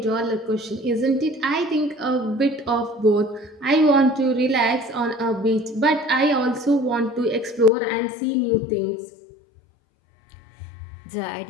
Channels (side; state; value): right; drops out; at 7.7 s